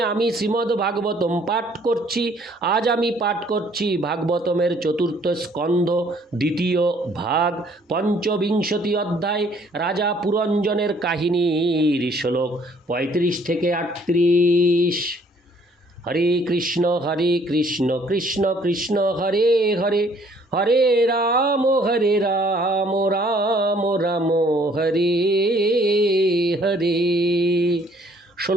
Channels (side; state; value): both; normal; correlation 0.61